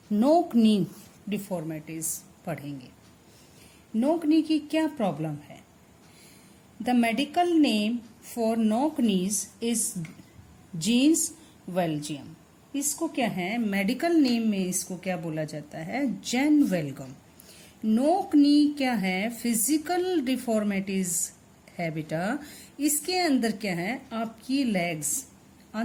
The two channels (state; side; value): identical; both; correlation 1.00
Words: नोक नी डिफॉर्मिटीज पढ़ेंगे। नोक नी की क्या प्रॉब्लम है? द मेडिकल नेम फॉर नोक नीज इज जीन्स वेल्जियम। इसको क्या है, मेडिकल नेम में इसको क्या बोला जाता है? जेन वेल्गम। नोक नी क्या है? फिजिकल डिफॉर्मिटीज है बेटा। इसके अंदर क्या है, आपकी लेग्स